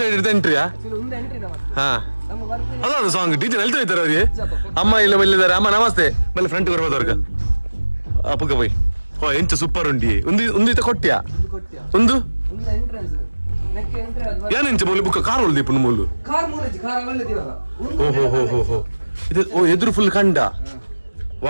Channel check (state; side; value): inverted; both; correlation -1.00